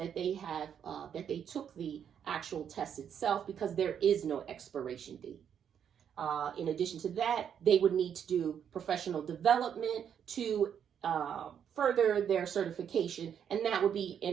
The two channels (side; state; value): left; quieter; 8.4 dB